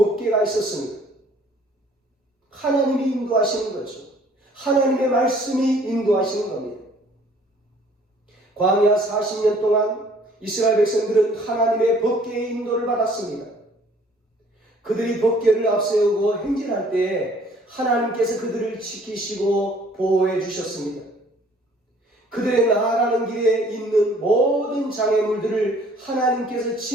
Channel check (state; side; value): normal; both; correlation 0.57